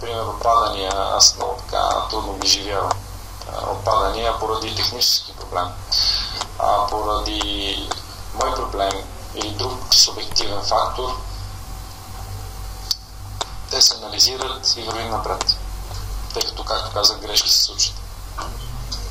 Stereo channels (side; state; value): both; identical; correlation 1.00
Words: отпадания. Аз много така трудно ги живявам. Отпадания поради технически проблем, поради мой проблем или друг субективен фактор. Те се анализират и вървим напред, тъй като, както казах, грешки се случат.